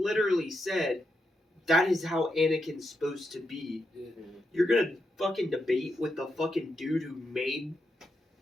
said that is how Anakin's supposed to be. Yeah. You're gonna fucking debate with the fucking dude who made.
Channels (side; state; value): both; normal; correlation 0.84